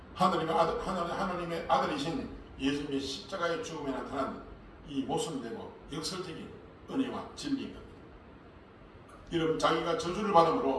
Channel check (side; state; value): both; identical; correlation 1.00